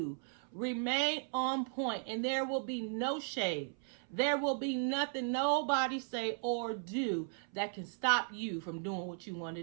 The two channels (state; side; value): silent; left; 54 dB below the other